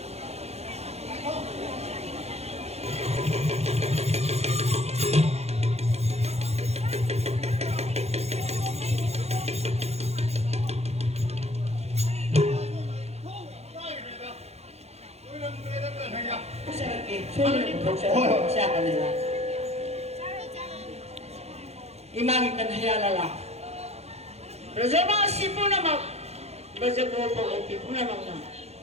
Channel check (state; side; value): late; left; 0.31 ms